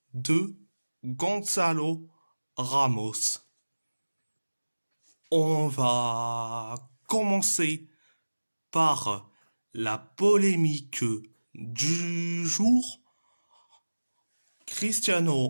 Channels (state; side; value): inverted; both; correlation -1.00